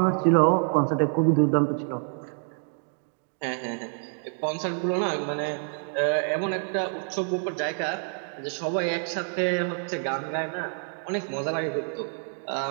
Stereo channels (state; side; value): silent; left; 57 dB below the other